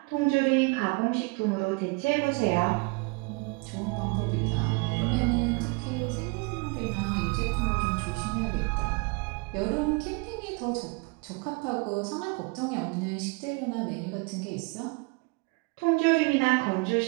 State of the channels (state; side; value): quieter; left; 29.6 dB